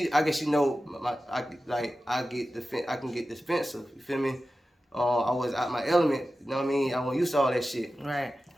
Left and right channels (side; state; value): both; normal; correlation 0.94